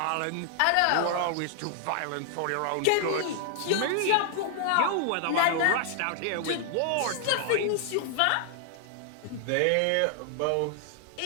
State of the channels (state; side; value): different; both; correlation 0.00